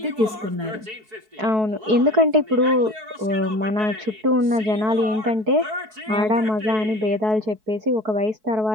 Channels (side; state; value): left; late; 4.6 ms